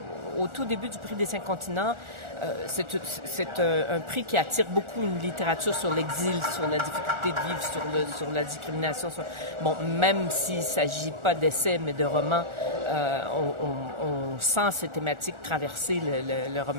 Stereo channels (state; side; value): late; left; 1.4 ms